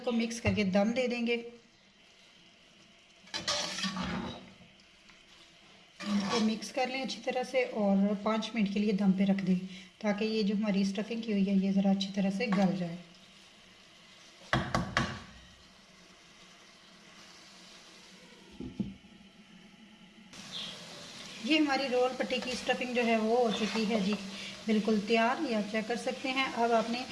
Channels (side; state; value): both; identical; correlation 1.00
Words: मिक्स करके दम दे देंगे। मिक्स कर लें अच्छी तरह से और 5 मिनट के लिए दम पे रख दें, ताकि ये जो हमारी स्टफिंग की हुई है ये ज़रा अच्छी तरह से गल जाए। ये हमारी रोल पट्टी की स्टफिंग जो है वो हो चुकी है जी, बिल्कुल तैयार। ये आप चेक कर सकते हैं। अब आपने,